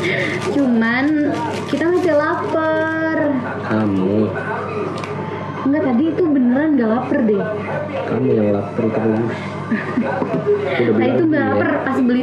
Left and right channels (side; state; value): both; identical; correlation 1.00